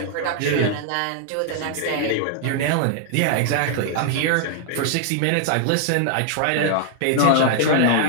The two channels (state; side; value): different; both; correlation -0.01